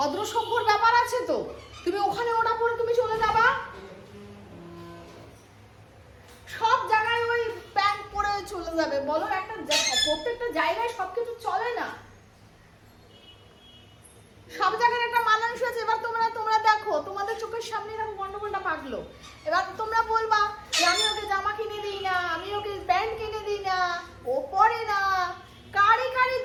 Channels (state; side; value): identical; both; correlation 1.00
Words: সভ্যর ব্যাপার আছে তো, তুমি ওখানে ওটা পরে তুমি চলে যাবা? সব জায়গায় ওই প্যান্ট পরে চলে যাবে বলো? একটা প্রত্যেকটা জায়গায় সবকিছু চলে না, সব জায়গায় একটা মানানসই আছে। এবার তোমরা দেখো, তোমাদের চোখের সামনে এরকম গন্ডগোলটা পাকলো, এবার তোমরা বলবা যে আমি ওকে জামা কিনে দিই না, আমি ওকে প্যান্ট কিনে দিই না, ও পরে না। কারি